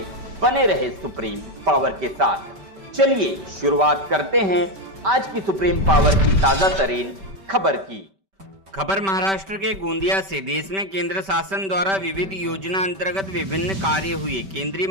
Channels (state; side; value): late; left; 5.2 ms